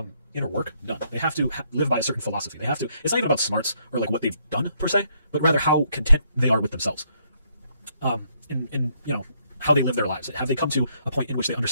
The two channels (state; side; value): inverted; both; correlation -0.72